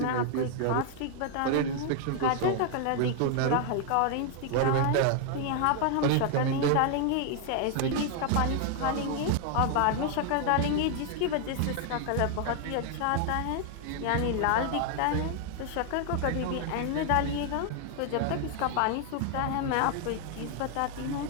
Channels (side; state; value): both; different; correlation 0.00